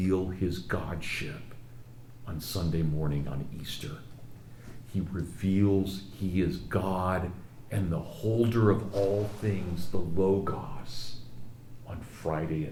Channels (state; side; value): identical; both; correlation 1.00